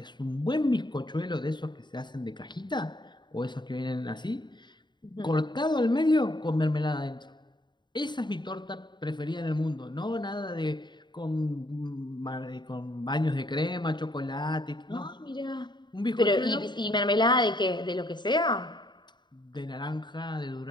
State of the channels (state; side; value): late; right; 0.22 ms